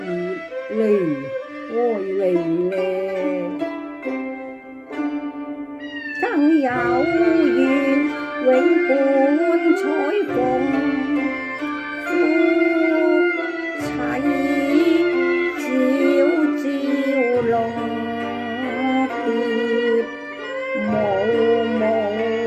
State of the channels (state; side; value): identical; both; correlation 1.00